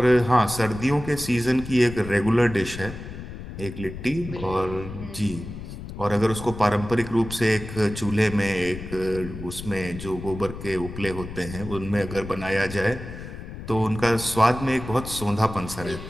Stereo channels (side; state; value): left; noise; rumble, 11 dB below the sound